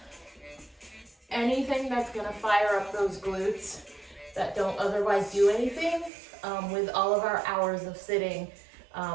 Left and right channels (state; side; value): drops out; left; at 6.1 s